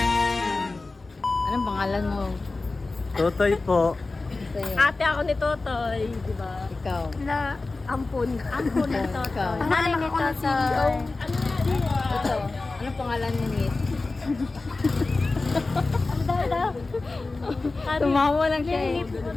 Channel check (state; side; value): quieter; right; 3.5 dB